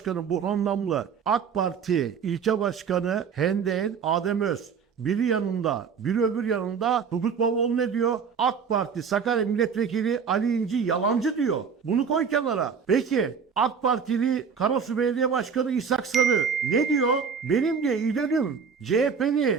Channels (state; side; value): quieter; left; 6.4 dB